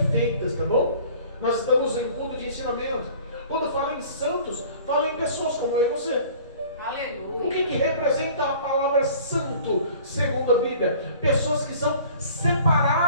tá bom? Nós estamos em culto de ensinamento. Quando fala em santos, fala em pessoas como eu e você. Aleluia. O que representa a palavra santo, segundo a Bíblia? Pessoas que são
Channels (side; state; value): both; inverted; correlation -0.48